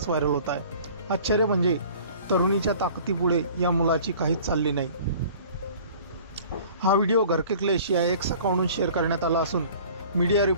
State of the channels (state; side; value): inverted; both; correlation -0.47